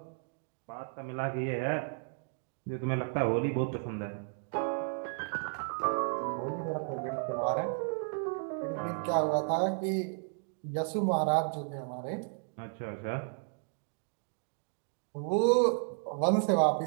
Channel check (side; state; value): left; silent; 55 dB below the other